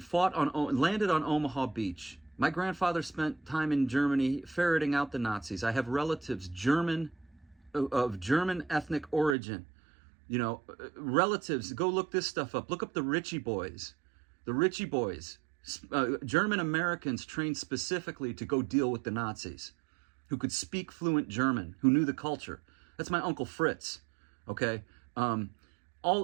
Omaha Beach. My grandfather spent time in Germany ferreting out the Nazis. I have relatives of German ethnic origin. Relatives, go look this stuff up. Look up the Ritchie Boys. The Ritchie Boys, German Americans trained specifically to go deal with the Nazis, who could speak fluent German, who knew the culture. That's my Uncle Fritz, okay?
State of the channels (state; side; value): drops out; left; at 9.3 s